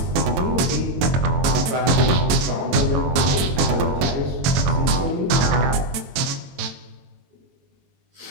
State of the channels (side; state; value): left; late; 22 ms